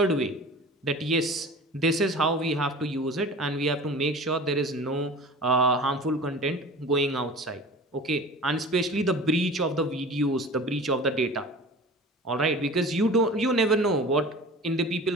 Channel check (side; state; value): both; normal; correlation 0.39